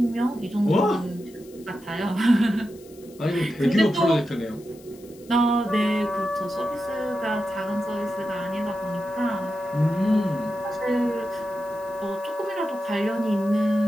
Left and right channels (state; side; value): noise; left; hiss, 25 dB below the sound